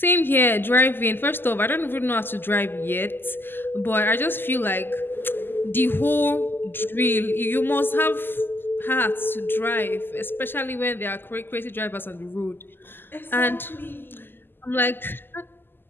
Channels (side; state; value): right; late; 0.097 ms